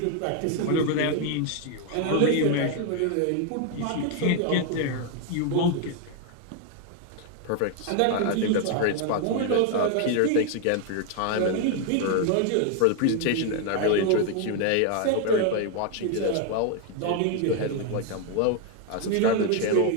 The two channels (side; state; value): both; different; correlation 0.00